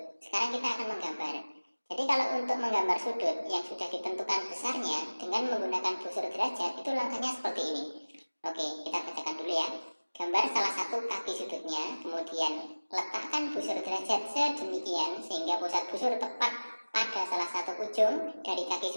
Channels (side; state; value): both; inverted; correlation -1.00